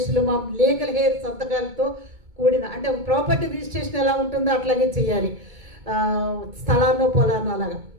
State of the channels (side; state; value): left; late; 2.2 ms